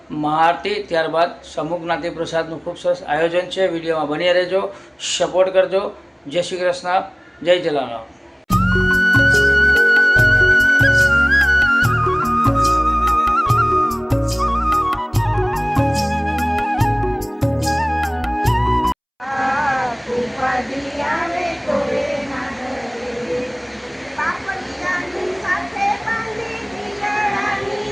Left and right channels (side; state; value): both; identical; correlation 1.00